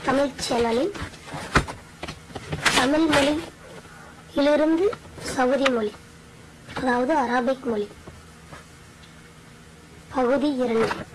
Tamil சேனலில் தமிழ் மொழியிலிருந்து Saudi மொழி, அதாவது அரபிக் மொழி பகுதி 2.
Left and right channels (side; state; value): both; identical; correlation 1.00